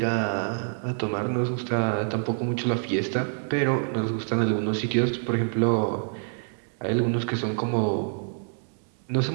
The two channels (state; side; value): silent; left; 58 dB below the other